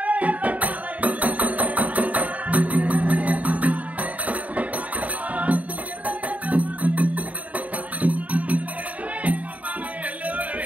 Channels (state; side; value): late; left; 0.070 ms